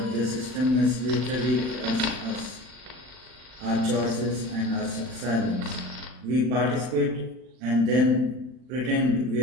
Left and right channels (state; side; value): late; left; 39 ms